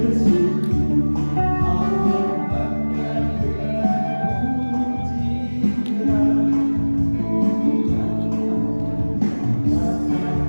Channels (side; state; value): both; inverted; correlation -1.00